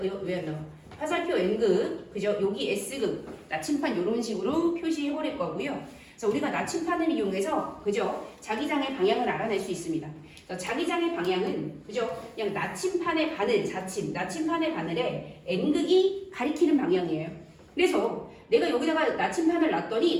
왜 안 나와? 화살표 N극 그죠? 여기 S극 나침판 이런 식으로 표시해 버릴 거고요. 그래서 우리가 나침판을 이용해서 그죠? 자기장의 방향을 알아낼 수 있습니다. 그래서 자기장의 방향은 그죠? 그냥 나침판의 바늘 자침 나침판의 바늘에 N극이 가리키는 방향이에요. 그래서 내가 여기다가 나침판을 놨더니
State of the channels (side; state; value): both; identical; correlation 1.00